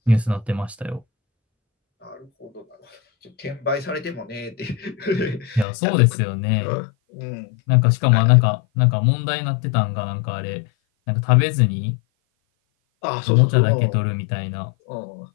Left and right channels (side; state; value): right; drops out; at 5.7 s